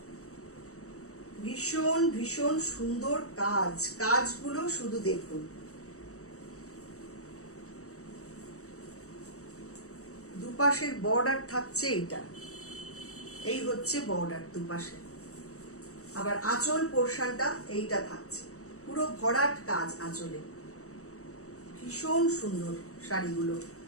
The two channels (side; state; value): right; late; 0.65 ms